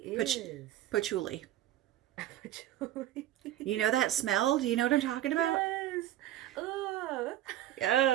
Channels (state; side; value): quieter; left; 13.2 dB